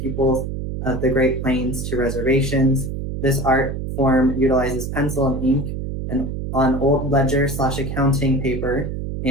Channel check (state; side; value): noise; right; hum, 5 dB below the sound